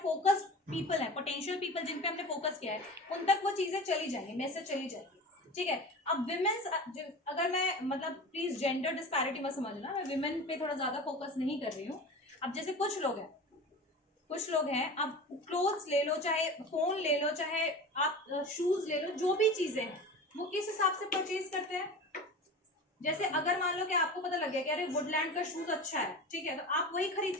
पीपल हैं, पोटेंशियल पीपल जिन पे हमने फोकस किया है, उन तक वो चीजें चली जाएंगी, मैसेज चली जाएगी। ठीक है, अब विमेन्स, अगर मैं मतलब प्लीज जेंडर डिस्पैरिटी मत समझना, मैं विमेन पे थोड़ा ज्यादा फोकस नहीं कर रही हूँ। अब जैसे कुछ लोग हैं, आप क्लोथ्स ले लो, चाहे फोन ले लो, चाहे आप शूज ले लो, जो भी चीजें हैं वो किस हिसाब से परचेज करते हैं। जैसे अगर मान लो कि आपको पता लग गया कि अरे वुडलैंड का शूज अच्छा है, ठीक है, तो आप वही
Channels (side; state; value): both; normal; correlation 0.32